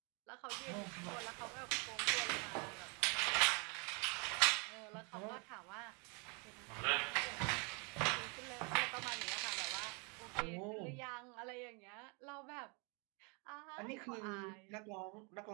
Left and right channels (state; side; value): quieter; left; 33.1 dB